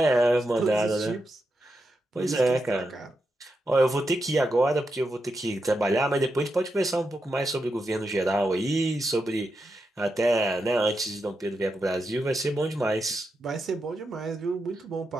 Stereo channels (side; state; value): both; normal; correlation 0.86